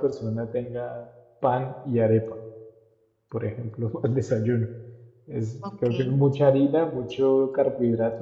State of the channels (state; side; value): identical; both; correlation 1.00